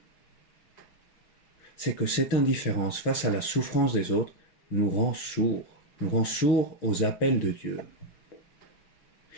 C'est que cette indifférence face à la souffrance des autres nous rend sourds aux appels de Dieu.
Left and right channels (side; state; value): right; late; 5.9 ms